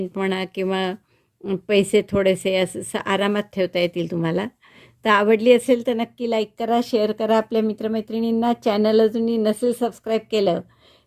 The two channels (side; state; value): both; identical; correlation 1.00